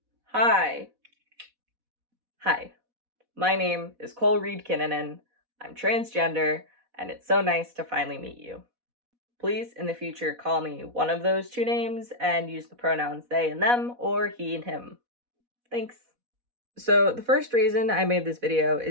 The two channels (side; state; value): left; late; 4.1 ms